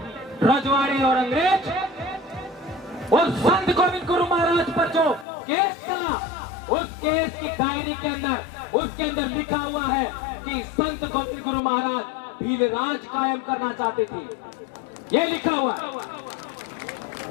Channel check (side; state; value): right; drops out; at 5.2 s